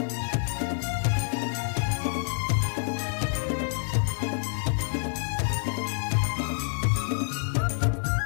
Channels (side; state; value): right; silent; 60 dB below the other